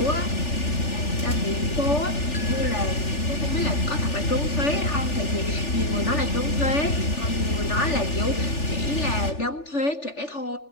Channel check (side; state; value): right; late; 3.4 ms